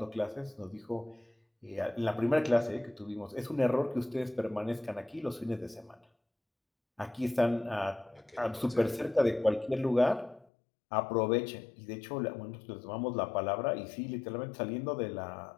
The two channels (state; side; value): drops out; right; at 10.5 s